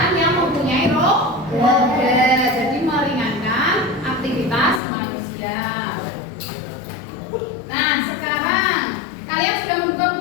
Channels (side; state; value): right; drops out; at 4.8 s